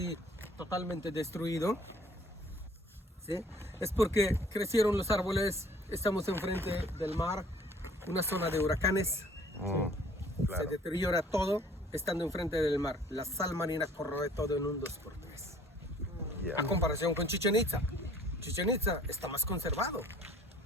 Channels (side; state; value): both; normal; correlation 0.55